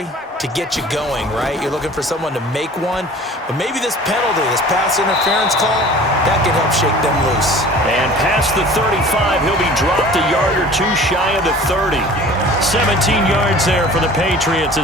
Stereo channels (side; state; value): both; normal; correlation 0.44